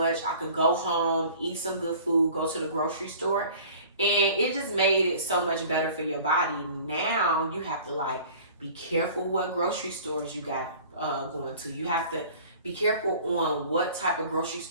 I could go home, eat some good food, go to the grocery store. And it just made it so much better for your body. Now you have to like be careful what grocery stores you got going to. You have to be careful on what type of grocery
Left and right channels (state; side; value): inverted; both; correlation -0.46